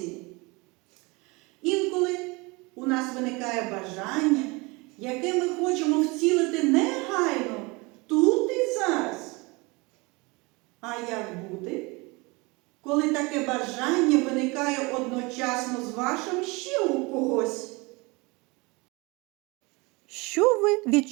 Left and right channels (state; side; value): quieter; left; 26.0 dB